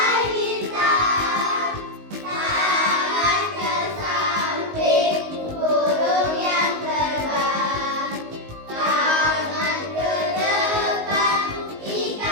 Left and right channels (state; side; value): late; left; 19 ms